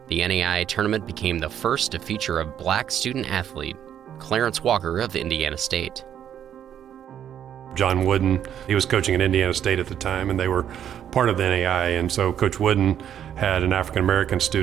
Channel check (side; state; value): left; quieter; 9.7 dB